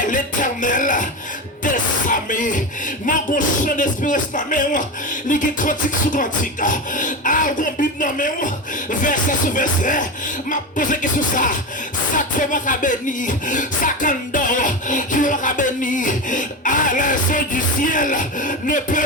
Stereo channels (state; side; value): normal; both; correlation 0.20